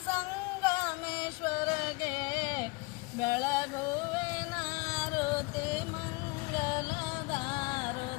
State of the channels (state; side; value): quieter; right; 26.6 dB